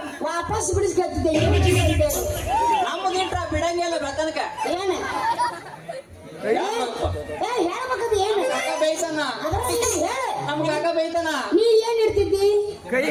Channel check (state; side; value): identical; both; correlation 1.00